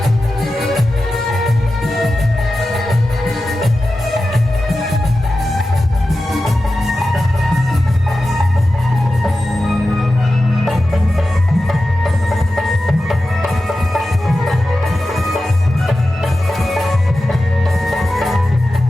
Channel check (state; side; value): normal; both; correlation 0.93